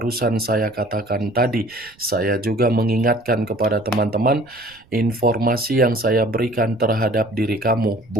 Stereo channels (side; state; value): right; noise; rumble, 29 dB below the sound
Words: saya katakan tadi, saya juga mengingatkan kepada teman-teman, informasi yang saya berikan terhadap diri kamu